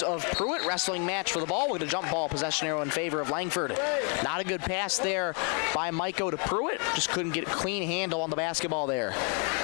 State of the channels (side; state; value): right; quieter; 39.1 dB